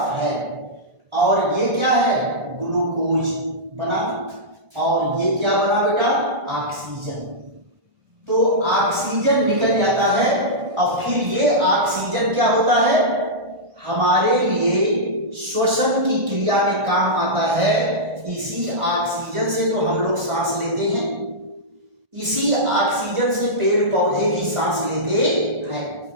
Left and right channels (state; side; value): late; left; 1.4 ms